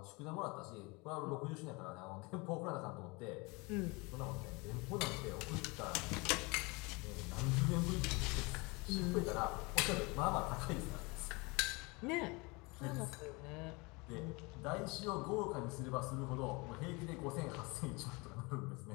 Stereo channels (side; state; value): right; quieter; 26.8 dB